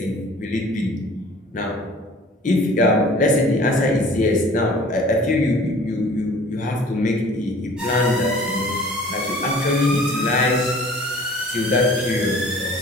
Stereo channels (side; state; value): both; normal; correlation 0.48